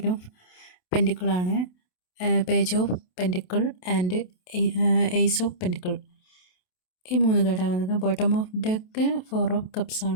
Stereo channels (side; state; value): right; late; 27 ms